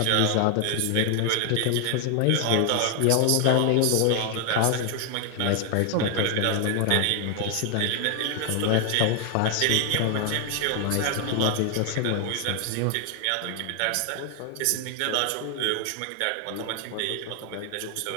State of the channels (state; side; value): different; both; correlation 0.00